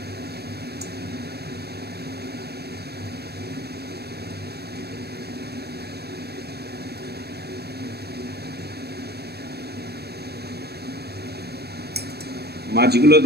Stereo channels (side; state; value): left; late; 0.47 ms